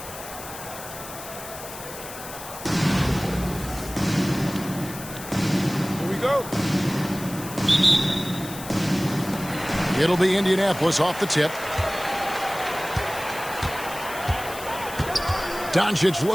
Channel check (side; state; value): left; noise; hiss, 13 dB below the sound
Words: It'll be Indianapolis off the tip. Doncic